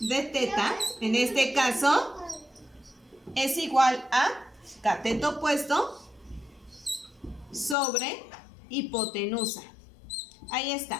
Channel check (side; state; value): right; drops out; at 7.8 s